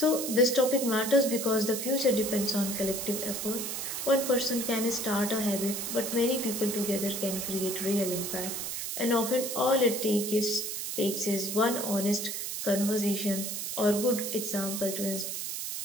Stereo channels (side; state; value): right; noise; hiss, 4 dB below the sound